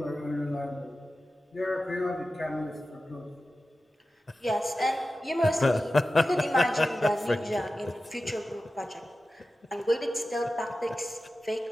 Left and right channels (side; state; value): both; normal; correlation 0.94